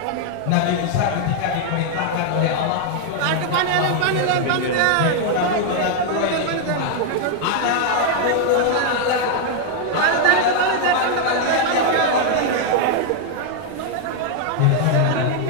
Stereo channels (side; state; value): both; different; correlation 0.00